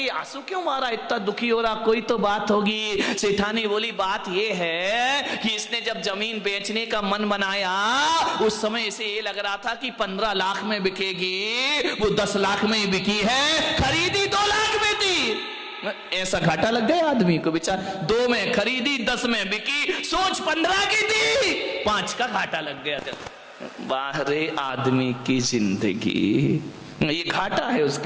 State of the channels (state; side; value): identical; both; correlation 1.00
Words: आंसू क्यों मारा, इतना दुखी हो रहा, कोई तो बात होगी। सेठानी बोली बात ये है कि इसने जब जमीन बेचने का मन बनाया उस समय इसे ये लग रहा था कि 15 लाख में बिकेगी, वो 10 लाख में ही बिकी है, खरीदी 2 लाख में थी। ऐसा घाटा लग गया आदमी को, बेचारा 2 में खरीदी 10 में बिकी, सोच 15 की थी, 5 का घाटा लग गया। बाहरे आदमी की जिंदगी, ये घाटा है